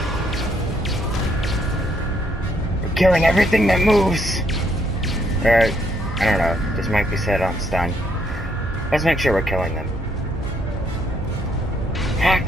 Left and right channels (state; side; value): normal; both; correlation 0.72